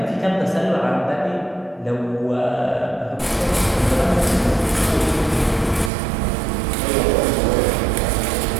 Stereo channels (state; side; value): drops out; left; at 5.9 s